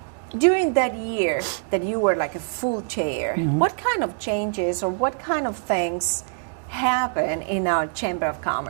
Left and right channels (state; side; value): silent; left; digital silence